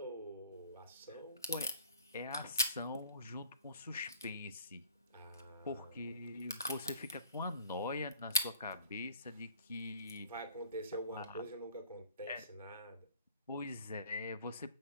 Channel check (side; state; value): both; inverted; correlation -0.50